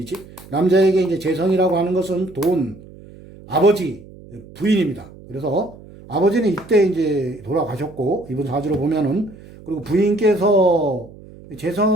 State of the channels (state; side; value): noise; right; hum, 20 dB below the sound